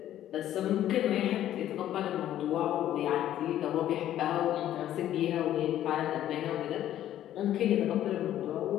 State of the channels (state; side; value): quieter; right; 12.1 dB